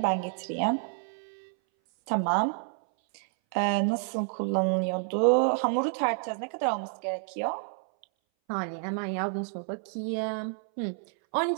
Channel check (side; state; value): left; silent; 58 dB below the other